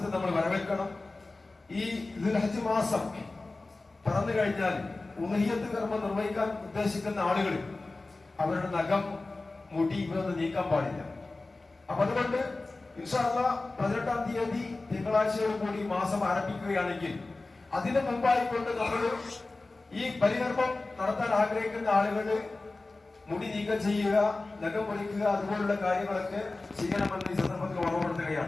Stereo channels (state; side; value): quieter; right; 3.3 dB